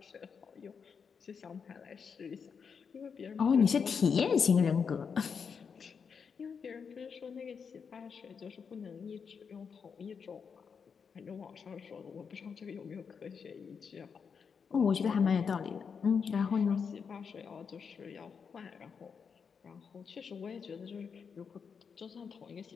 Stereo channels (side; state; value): right; quieter; 6.2 dB